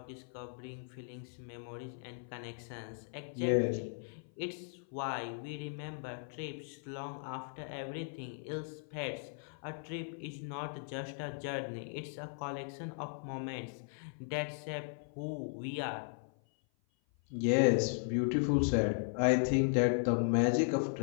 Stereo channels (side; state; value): right; silent; 53 dB below the other